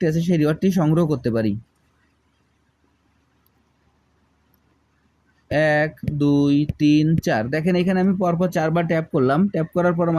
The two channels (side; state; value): both; identical; correlation 1.00